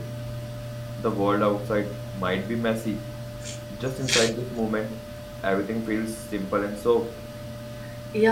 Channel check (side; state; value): both; identical; correlation 1.00